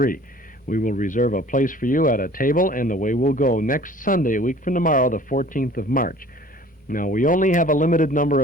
We will reserve a place for you at a table, and away we'll go next Sunday, a week from tomorrow, the 14th of March. Now, we only have a limited number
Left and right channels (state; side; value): normal; both; correlation 0.49